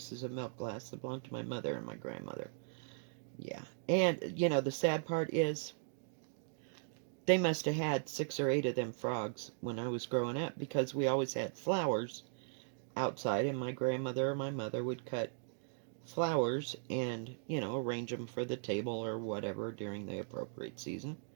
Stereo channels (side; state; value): left; silent; digital silence